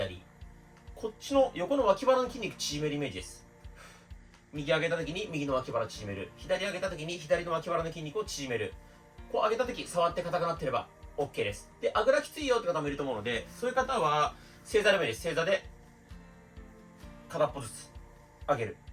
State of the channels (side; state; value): both; identical; correlation 1.00